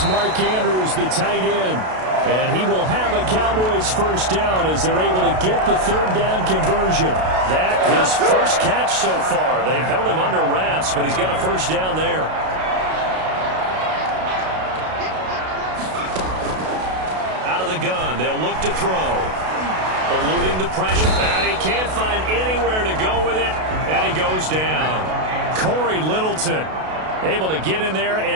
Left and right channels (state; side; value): late; left; 32 ms